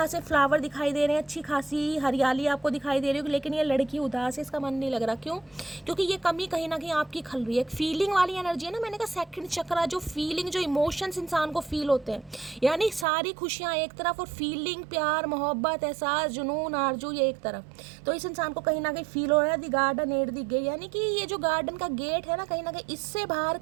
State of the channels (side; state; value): left; drops out; at 13.1 s